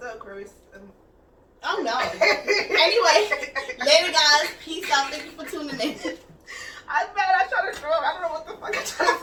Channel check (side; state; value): both; identical; correlation 1.00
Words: Aquarius? Oh no. Anyway, later guys. Peace out. Thank you for tuning in. I'm mad. I try to throw up. I don't know what the fuck I'm trying